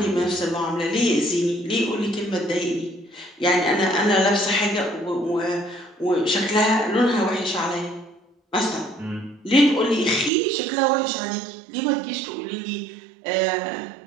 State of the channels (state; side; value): drops out; left; at 10.3 s